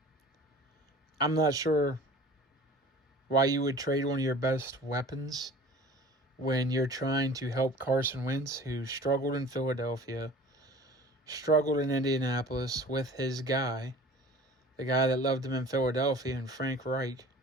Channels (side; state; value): both; normal; correlation 0.44